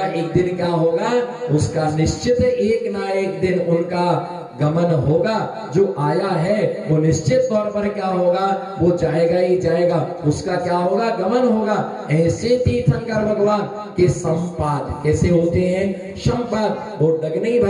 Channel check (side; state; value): both; identical; correlation 1.00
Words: एक दिन क्या होगा? उसका निश्चित एक ना एक दिन उनका गमन होगा। जो आया है वो निश्चित तौर पर क्या होगा? वो जाएगा ही जाएगा, उसका क्या होगा? गमन होगा। ऐसे तीर्थंकर भगवान के संपाद कैसे होते हैं? संपाद, वो डगनी